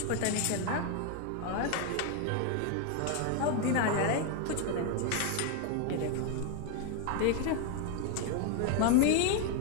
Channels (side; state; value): both; different; correlation 0.01